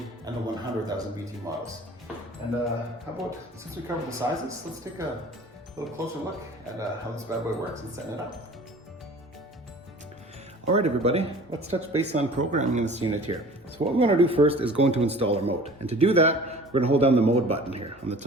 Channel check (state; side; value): normal; both; correlation 0.45